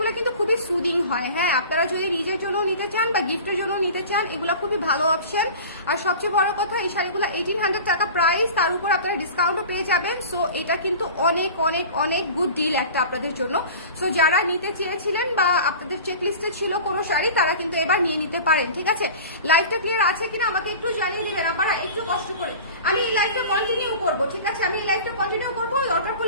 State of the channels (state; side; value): inverted; both; correlation -0.38